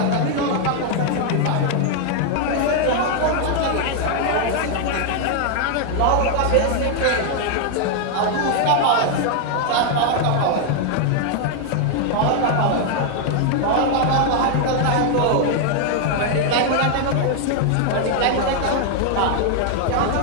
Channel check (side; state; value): both; different; correlation 0.00